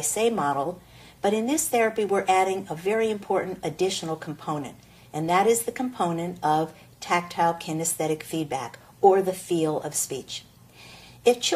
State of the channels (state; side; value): identical; both; correlation 1.00